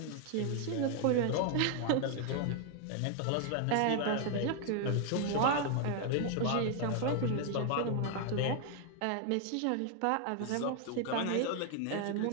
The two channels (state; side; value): different; both; correlation 0.00